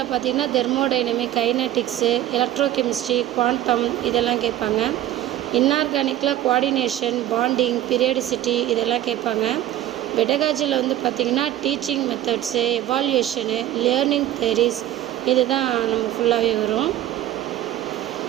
பார்த்திங்கன்னா தெர்மோடைனமிக், கைனட்டிக்ஸு, எலக்ட்ரோகெமிஸ்ட்ரி, குவாண்டம் இதெல்லாம் கேட்பாங்க. இன்ஆர்கானிக்கில் கோஆர்டினேஷன், பாண்டிங், பீரியாடிசிட்டி இதெல்லாம் கேட்பாங்க. பெடகாஜியில் வந்து பார்த்திங்கன்னா டீச்சிங் மெத்தட்ஸு, எவால்யூஷனு, லேர்னிங் தியரிஸ் இது தான் நம்ம ஃபுல்லாகவே வரும்.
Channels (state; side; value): quieter; left; 13.2 dB